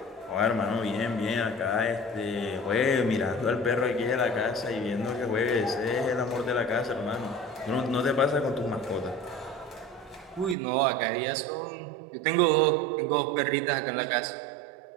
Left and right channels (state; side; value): drops out; left; at 10.6 s